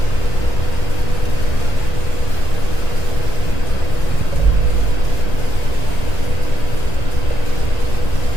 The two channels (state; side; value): late; right; 1.9 ms